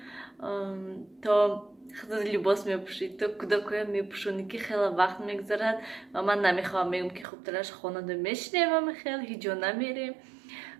то خیلی لباس میپوشید تو کودکای میپوشونی که خیلی وقت میگذرد و من نمیخوام میگم که خوب ترش خانواده میشنیم و خیلی هیچ جا نمیریم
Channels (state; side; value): drops out; left; at 7.2 s